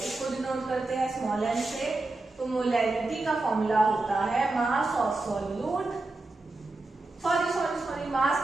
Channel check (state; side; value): quieter; left; 3.1 dB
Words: इसको डिनोट करते हैं स्मॉल एन से। तो मोलैरिटी का फॉर्मूला होता है mass of solute, sorry mass